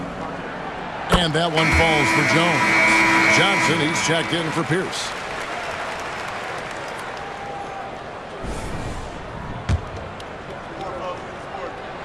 And that one falls for Jones. Johnson, he's checked in for Pierce.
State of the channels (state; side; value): identical; both; correlation 1.00